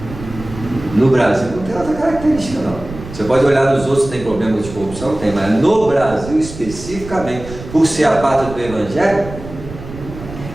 No Brasil não tem outra característica, não. Você pode olhar nos outros, tem problemas de corrupção? Tem, mas no Brasil especificamente, por ser a pátria do Evangelho,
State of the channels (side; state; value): right; noise; rumble, 13 dB below the sound